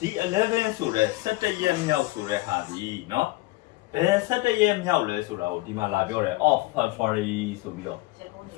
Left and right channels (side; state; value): right; quieter; 20.1 dB